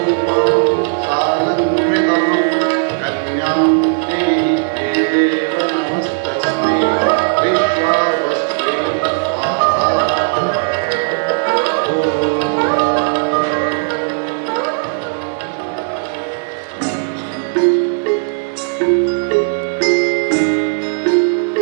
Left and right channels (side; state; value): left; silent; digital silence